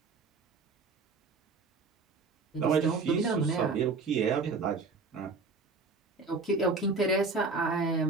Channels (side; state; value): left; quieter; 4.1 dB